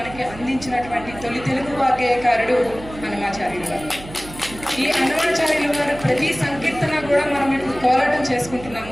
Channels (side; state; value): right; noise; hum, 15 dB below the sound